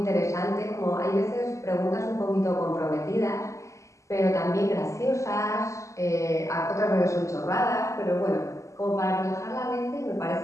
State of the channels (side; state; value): right; late; 0.15 ms